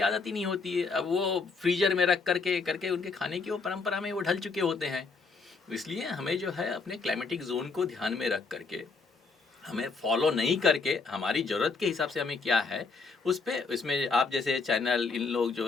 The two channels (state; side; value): quieter; right; 4.4 dB